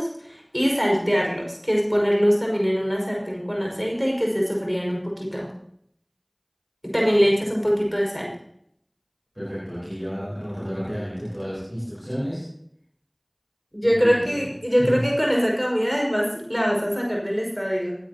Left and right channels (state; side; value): identical; both; correlation 1.00